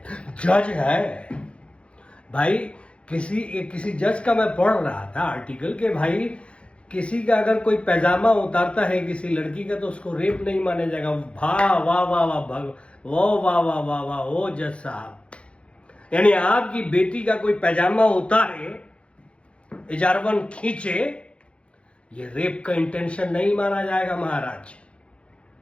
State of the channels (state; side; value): late; right; 0.059 ms